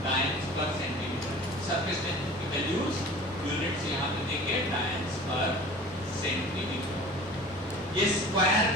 टाइम्स पर सेंटीमीटर। सरफेस टेंशन की वैल्यूज यूनिट्स यहाँ पे देखिए, टाइम्स पर सेंटीमीटर। ये स्क्वायर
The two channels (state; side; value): normal; both; correlation 0.42